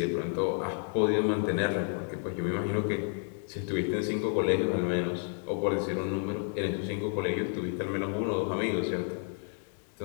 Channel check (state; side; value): silent; right; 56 dB below the other